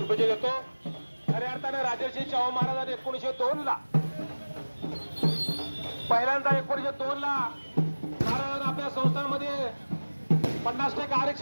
देतो. खऱ्या अर्थाने राजर्षी शाहू महाराजांनी 1902 ला पहिल्यांदा 1902 ला महाराजांनी आपल्या संस्थांमध्ये 50%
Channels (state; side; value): inverted; both; correlation -1.00